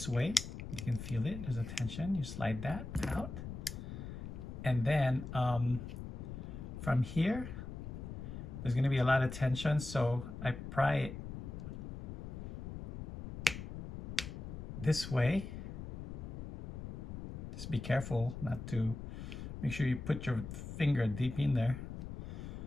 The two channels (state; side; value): noise; left; rumble, 8 dB below the sound